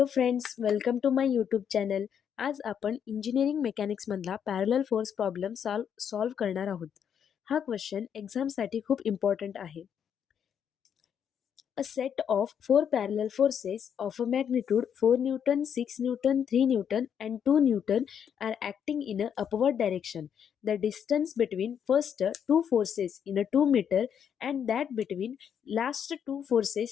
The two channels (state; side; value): quieter; right; 8.2 dB